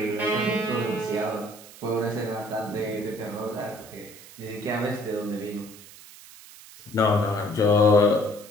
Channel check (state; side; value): noise; right; hiss, 19 dB below the sound